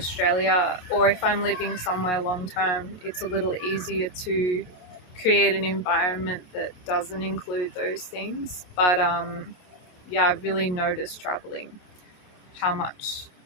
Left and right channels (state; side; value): late; right; 28 ms